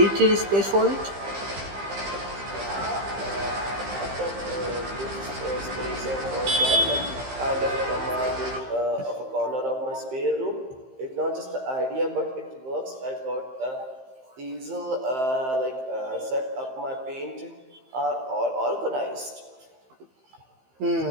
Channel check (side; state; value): left; late; 15 ms